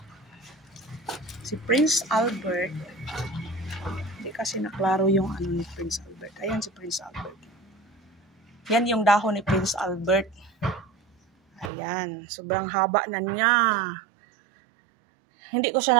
Si Prince Albert, hindi kasi naklaro yung ni Prince Albert. Ayan si Prince Albert. Yan yung dahon ni Prince Albert. Ayan, sobrang haba na niya. Hindi ko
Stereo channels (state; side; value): drops out; left; at 11.7 s